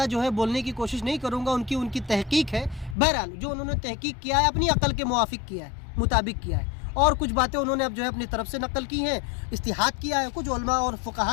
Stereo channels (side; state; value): right; drops out; at 3.0 s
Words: جو ہے بولنے کی کوشش نہیں کروں گا, ان کی تحقیق ہے. بہرحال جو انہوں نے تحقیق کیا ہے اپنی عقل کے موافق کیا ہے, مطابق کیا ہے, اور کچھ باتیں انہوں نے اب جو ہے اپنی طرف سے نقل کی ہیں, اجتہاد کیا ہے, کچھ علماء اور